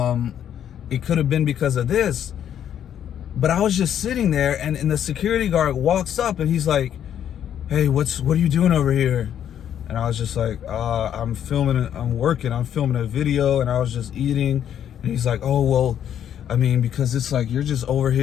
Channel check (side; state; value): right; quieter; 9.8 dB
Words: could have been because of this. But I was just sitting there, and the security guard walks up, and he's like, hey, what are you doing over here? And I was just like, I'm filming a video, and I was just eating. And he's like, oh, well, I mean, because it's like, you're just over